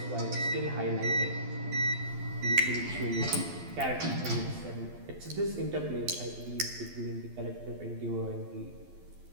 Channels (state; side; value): late; left; 12 ms